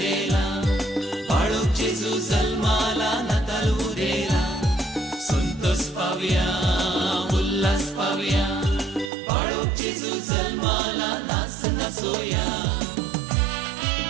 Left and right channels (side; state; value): left; drops out; at 9.1 s